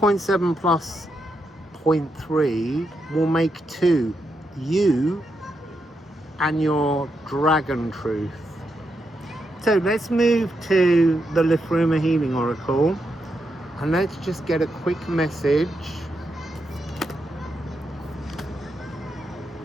plus 0.3 will make 2. You and your dragon truth. So let's move to the Liffruma Healing Oracle, and let's just get a quick message.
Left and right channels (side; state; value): both; normal; correlation 0.83